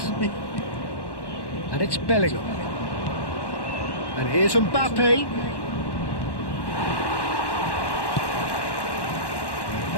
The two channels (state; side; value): late; right; 1.1 ms